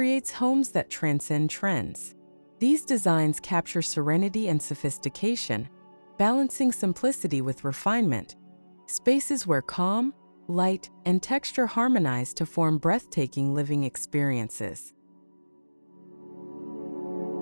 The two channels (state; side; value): inverted; both; correlation -1.00